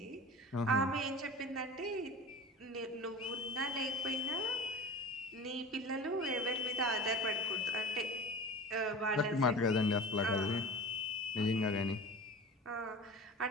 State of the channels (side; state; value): both; normal; correlation 0.36